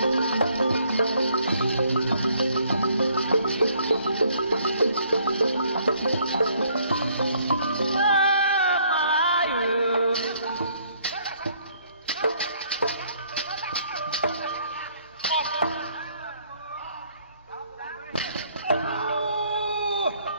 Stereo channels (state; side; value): inverted; both; correlation -0.64